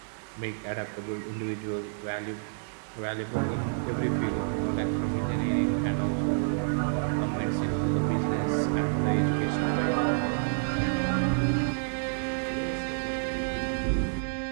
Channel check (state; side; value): silent; left; 59 dB below the other